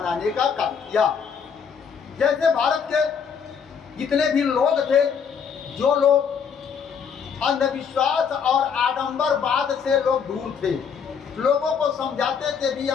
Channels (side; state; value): right; quieter; 6.8 dB